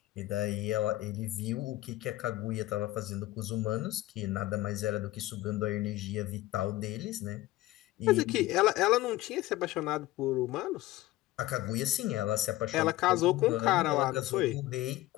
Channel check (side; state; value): right; quieter; 16.9 dB